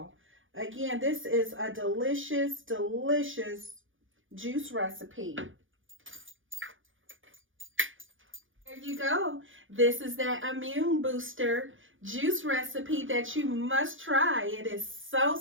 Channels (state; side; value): late; left; 0.57 ms